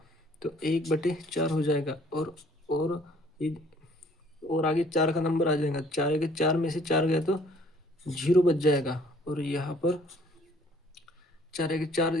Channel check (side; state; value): both; normal; correlation 0.59